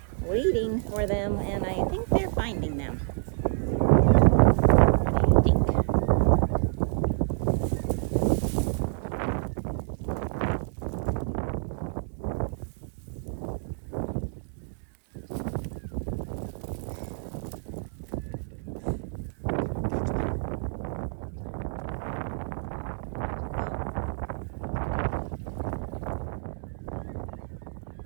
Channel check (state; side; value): silent; left; digital silence